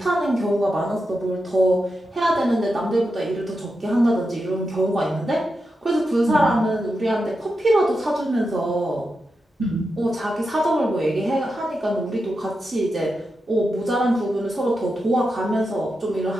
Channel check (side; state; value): both; normal; correlation 0.88